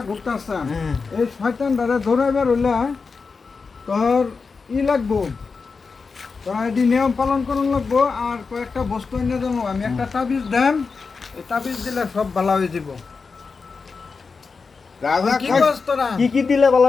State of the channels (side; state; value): right; quieter; 4.8 dB